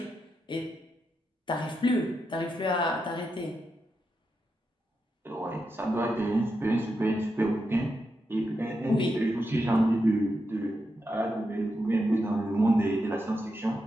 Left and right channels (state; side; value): normal; both; correlation 0.86